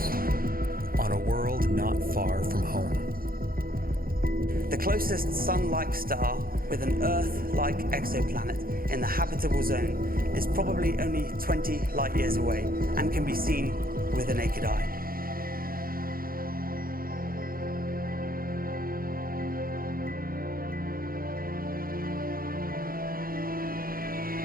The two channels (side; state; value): left; late; 0.42 ms